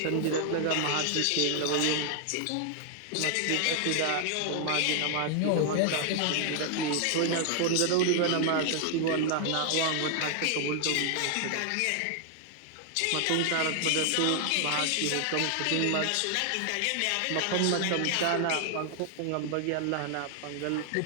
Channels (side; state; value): both; different; correlation 0.00